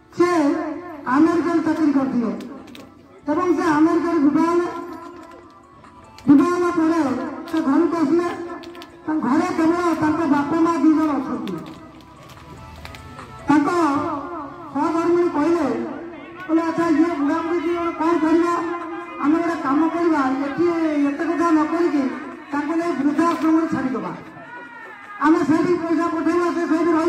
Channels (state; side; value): identical; both; correlation 1.00